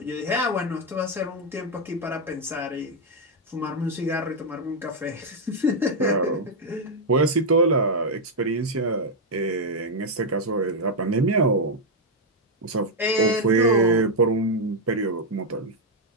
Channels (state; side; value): normal; both; correlation 0.00